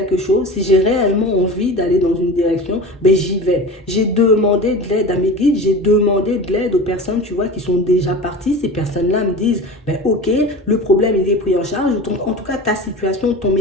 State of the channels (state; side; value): normal; both; correlation 0.33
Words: chose, si j'ai réellement envie d'aller dans une direction, ben j'y vais. J'ai demandé de l'aide à mes guides, j'ai demandé de l'aide aux personnes, tu vois, qui sont déjà parties. Ces personnes-là me disent, ben ok, le problème il est pris en charge. En tout cas, ta situation, ton